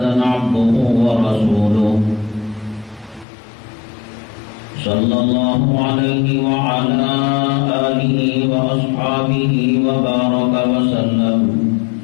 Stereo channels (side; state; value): right; drops out; at 3.2 s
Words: عبده ورسوله صلى الله عليه وعلى آله وأصحابه وبارك وسلم